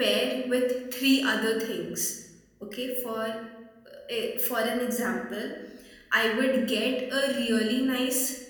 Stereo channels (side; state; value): both; identical; correlation 1.00